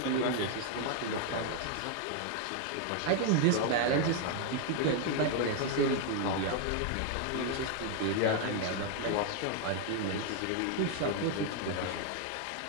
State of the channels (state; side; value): different; both; correlation 0.00